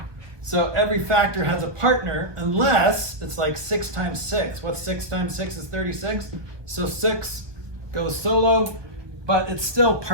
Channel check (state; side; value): late; left; 1.2 ms